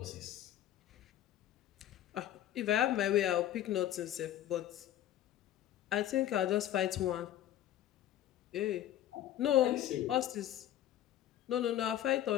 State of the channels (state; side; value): quieter; right; 12.1 dB